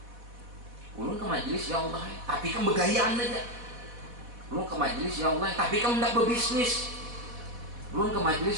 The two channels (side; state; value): left; late; 4.1 ms